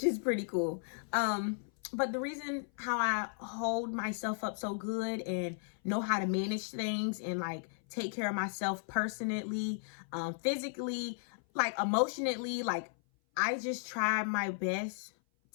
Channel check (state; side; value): silent; right; 54 dB below the other